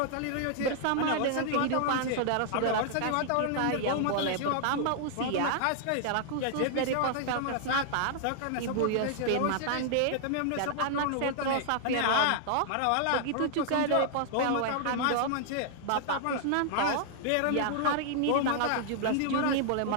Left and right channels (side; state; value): both; different; correlation 0.00